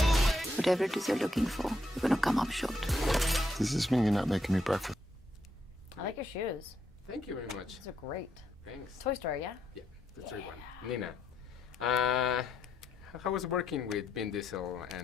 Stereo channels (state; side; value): normal; both; correlation 0.78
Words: Whatever it is you're looking for, you're gonna come up short. Does this mean you're not making me breakfast? I like your shoes. Thank you very much. These are great. Thanks. Toy Story, yeah? Yeah, that's the right one. Nina, how was working with Vin Diesel